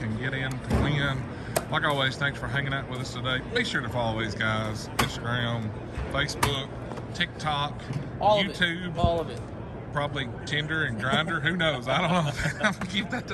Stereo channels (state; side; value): identical; both; correlation 1.00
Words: get in to win. Like always, thanks for hanging out with us today. Be sure to follow these guys: Instagram, Facebook, TikTok, All YouTube. of it. All of it. Probably Tinder and Grindr. Who knows? I don't know. I'm gonna keep that